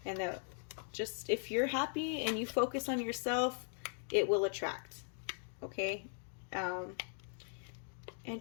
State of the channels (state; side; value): silent; right; 51 dB below the other